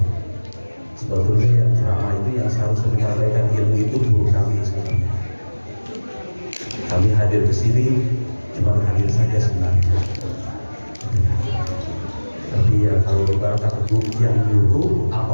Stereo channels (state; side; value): inverted; both; correlation -1.00